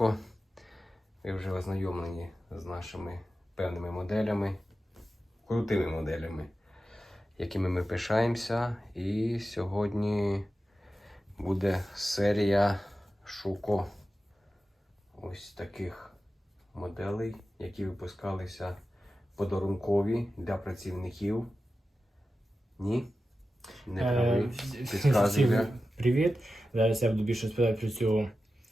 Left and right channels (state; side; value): normal; both; correlation 0.93